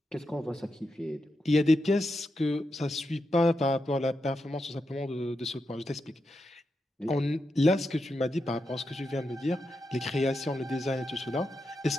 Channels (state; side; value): normal; both; correlation 0.86